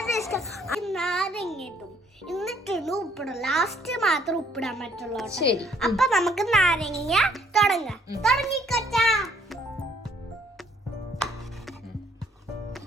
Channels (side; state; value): both; normal; correlation 0.65